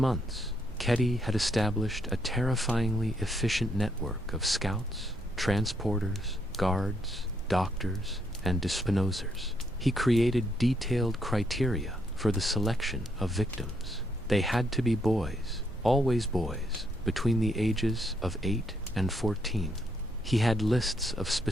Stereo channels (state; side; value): normal; both; correlation 0.75